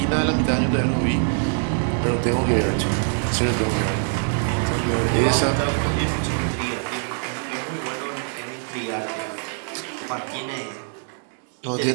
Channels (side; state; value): left; silent; 55 dB below the other